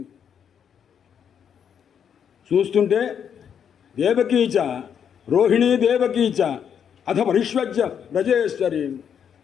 చూస్తుంటే దేవకీచ రోహిణీ దేవకీచ అథ పరిష్వజ్య బ్రజేశ్వరి.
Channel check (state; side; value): quieter; right; 8.1 dB